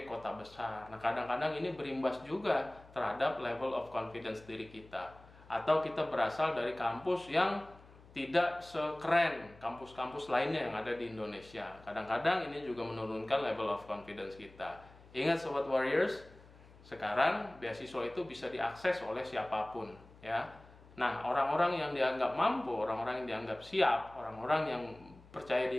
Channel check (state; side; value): noise; left; hum, 23 dB below the sound